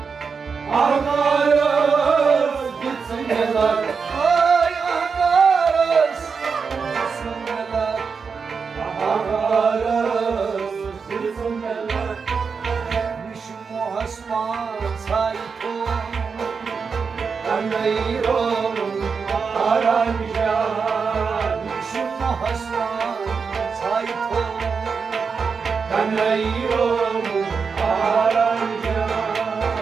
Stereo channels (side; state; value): left; quieter; 5.5 dB